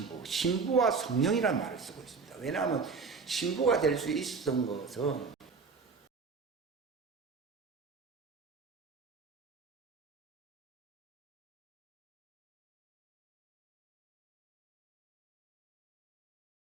신부와 성령이라는 말을 쓰고 있습니다. 왜냐하면 신부가 될 수 있었던 것은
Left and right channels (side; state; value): left; quieter; 4.9 dB